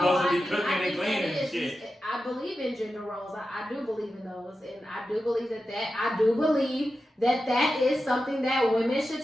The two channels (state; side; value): normal; both; correlation 0.91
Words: to be cooking and cleaning and shit. I believe in gender roles. I do believe in those, and I do believe that is something that women should